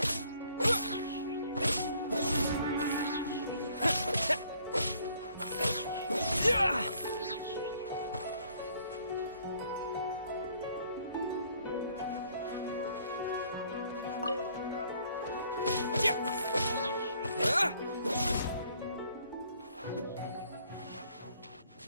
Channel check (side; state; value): both; inverted; correlation -0.63